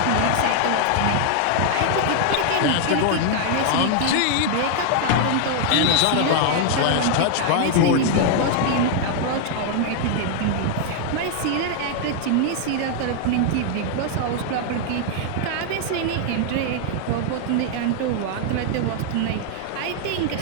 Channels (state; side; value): different; both; correlation 0.00